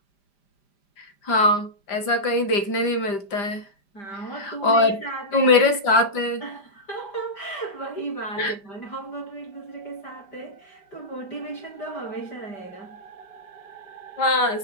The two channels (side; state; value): right; late; 5.0 ms